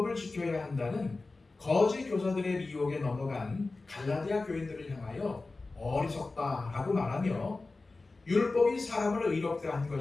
지켜야 한다는 거짓 교사들의 미혹에 넘어간 갈라디아 교인들을 향하여 어리석다라고 말하며 율법이 사람을 의롭게 한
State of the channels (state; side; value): quieter; right; 3.5 dB